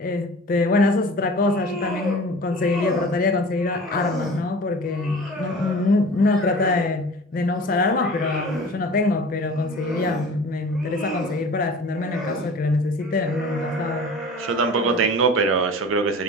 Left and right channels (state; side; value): normal; both; correlation 0.41